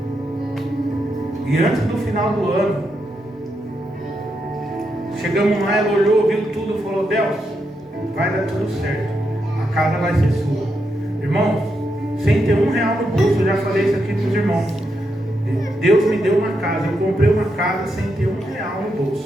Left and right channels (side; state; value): both; normal; correlation 0.83